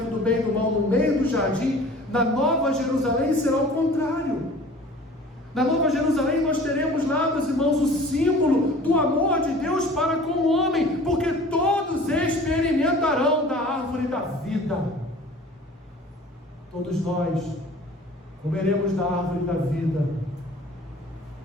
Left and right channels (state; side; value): normal; both; correlation 0.46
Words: do bem e do mal no meio do jardim, na Nova Jerusalém será o contrário. Na Nova Jerusalém nós teremos lá, meus irmãos, o símbolo do amor de Deus para com o homem, porque todos experimentarão da árvore da vida. Todos nós comeremos da árvore da vida.